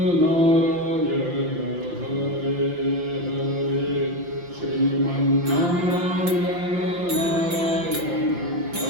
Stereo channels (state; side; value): late; left; 5.8 ms